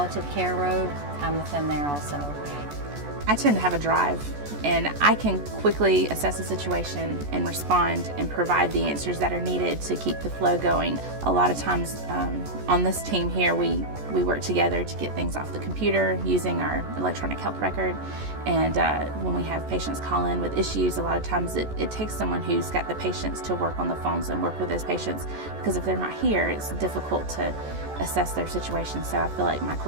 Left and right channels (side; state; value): left; late; 14 ms